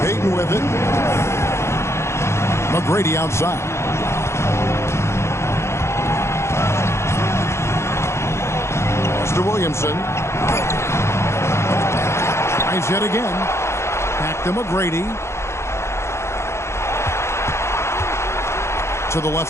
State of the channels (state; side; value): late; right; 0.13 ms